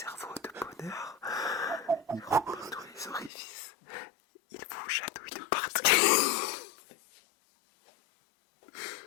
de bonheur. Il remplit tous les orifices. Il vous chatouille de partout.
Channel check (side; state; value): right; drops out; at 3.3 s